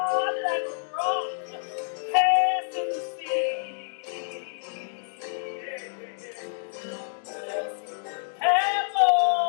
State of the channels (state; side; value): silent; right; digital silence